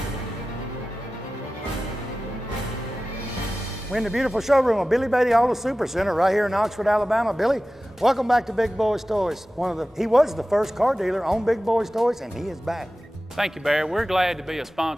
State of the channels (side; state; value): both; normal; correlation 0.95